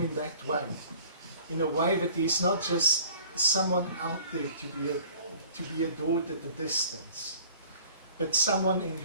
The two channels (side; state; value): both; inverted; correlation -0.49